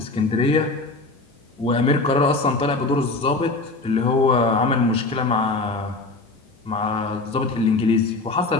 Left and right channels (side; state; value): right; quieter; 3.4 dB